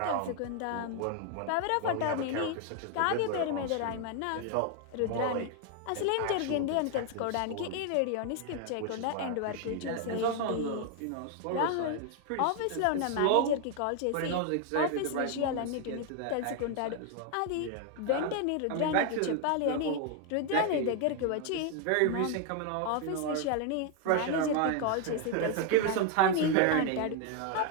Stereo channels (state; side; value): different; both; correlation 0.01